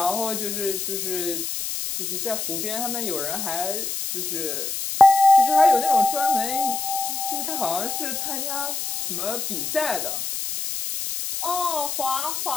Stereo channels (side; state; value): left; noise; hiss, 4 dB below the sound